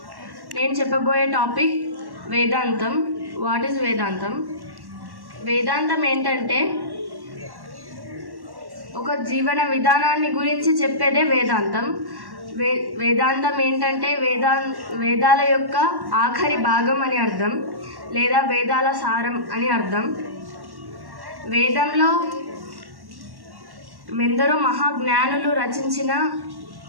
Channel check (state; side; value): late; left; 1.1 ms